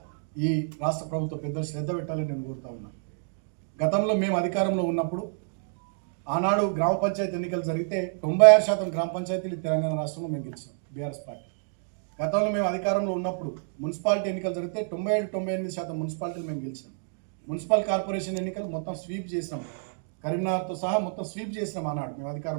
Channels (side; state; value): left; silent; digital silence